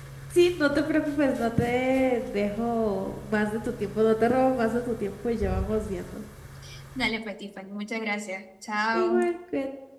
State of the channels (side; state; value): both; identical; correlation 1.00